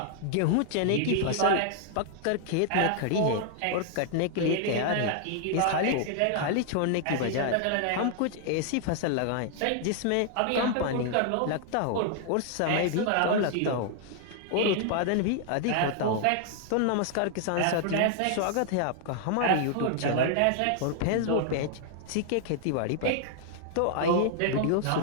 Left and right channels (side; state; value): both; different; correlation 0.00